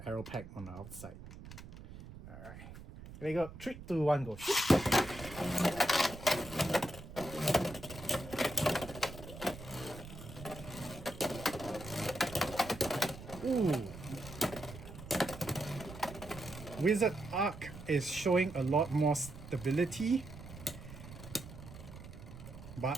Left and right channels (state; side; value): noise; right; rumble, 14 dB below the sound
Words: Aero Pack on the outside. Alright, here we go. 3, 2, 1, go. Shoot. Ooh. Wizard Arc is showing a lot more stability,